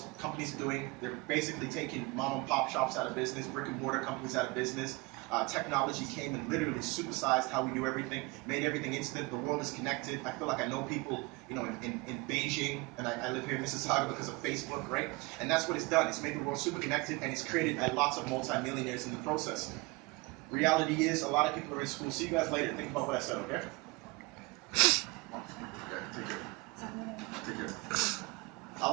companies are doing, they're basically taking mom and pop shops out of business, brick and mortar companies out of business. Technology came and literally supersized how we do everything, made everything instant. The world is connected. I feel like I know people, in Beijing, and I live here in Mississauga because of Facebook, right? And that's what it's done. It's made the world super connected, and it's created lots of multimillionaires in the process. Reality is, a lot of people are in school. See you guys later. Think about what I said, okay? Okay, take care. Take care. A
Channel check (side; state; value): left; quieter; 25.4 dB